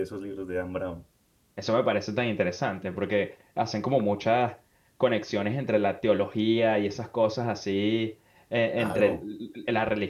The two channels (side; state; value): both; identical; correlation 1.00